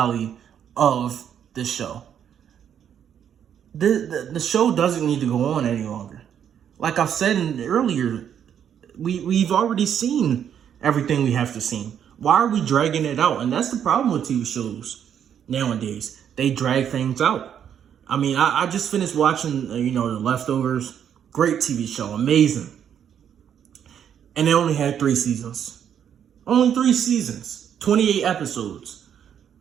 of this show. The show doesn't need to go on any longer. Like I said earlier, we've already seen everything we have to see. Why are we dragging it out? And that's the problem with TV shows nowadays. They drag things out. I mean, I just finished watching, The Leftovers. Great TV show. Amazing. And it only had 3 seasons. Only 3 seasons. 28 episodes.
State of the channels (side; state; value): left; quieter; 8.9 dB